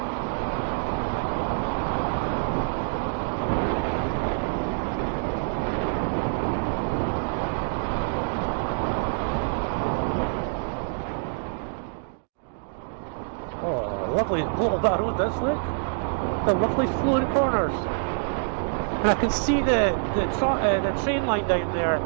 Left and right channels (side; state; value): left; silent; digital silence